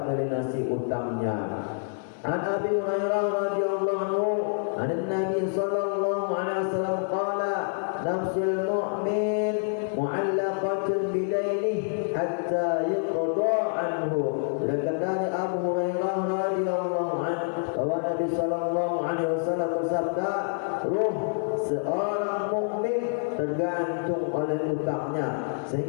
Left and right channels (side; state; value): right; silent; 58 dB below the other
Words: melunasi utangnya. An Abi Hurairah radhiyallahu anhu an Nabi sallallahu alaihi wasallam qala nafsul mu'min mu'allaqatun bidainih hatta yuqda anhu. Dari Abu Hurairah radhiyallahu anhu bahwa Nabi sallallahu alaihi wasallam bersabda, ruh seorang mukmin tergantung oleh utangnya